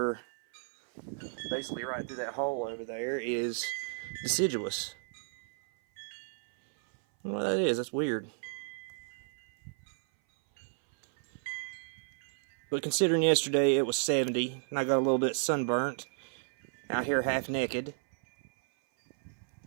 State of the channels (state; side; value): silent; left; 56 dB below the other